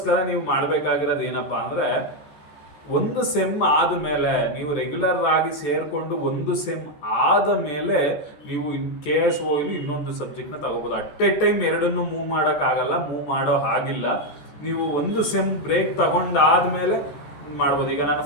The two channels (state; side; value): late; right; 14 ms